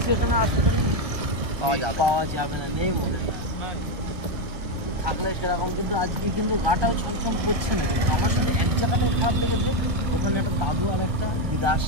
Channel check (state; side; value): late; left; 1.2 ms